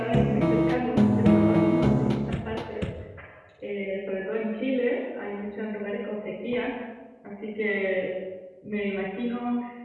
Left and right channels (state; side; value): identical; both; correlation 1.00